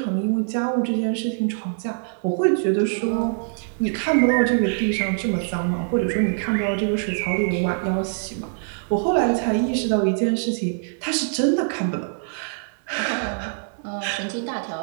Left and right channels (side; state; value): left; silent; digital silence